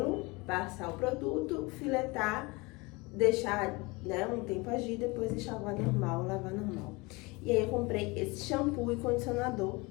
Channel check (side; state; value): right; quieter; 25.3 dB